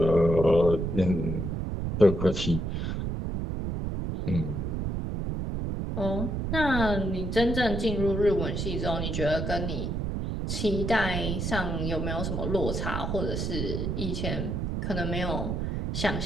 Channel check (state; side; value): noise; right; rumble, 2 dB below the sound